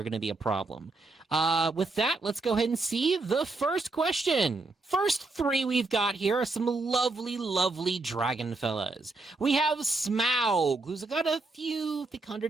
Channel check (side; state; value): left; quieter; 3.4 dB